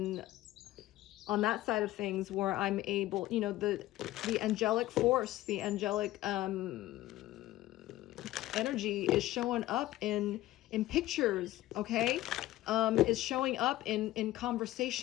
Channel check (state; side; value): quieter; right; 16.0 dB